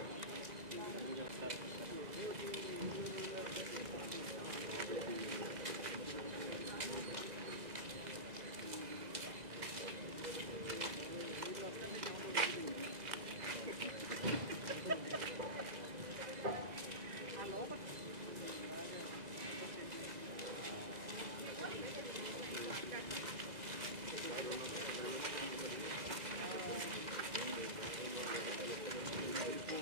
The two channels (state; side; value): late; left; 2.0 ms